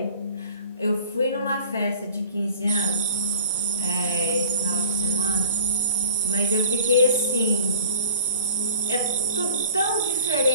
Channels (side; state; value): both; inverted; correlation -0.45